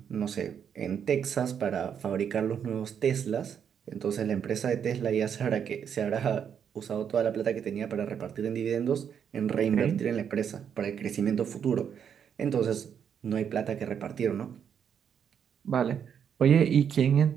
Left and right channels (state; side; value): quieter; left; 8.0 dB